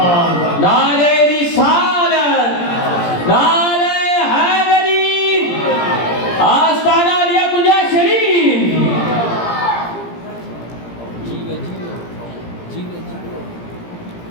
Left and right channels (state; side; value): late; right; 17 ms